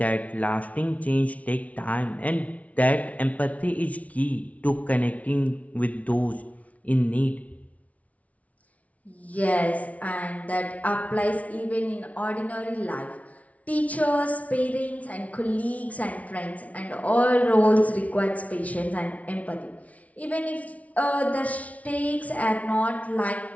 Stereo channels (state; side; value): late; right; 0.068 ms